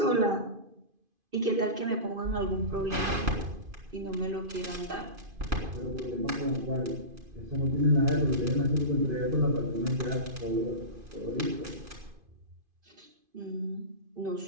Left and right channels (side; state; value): left; late; 2.5 ms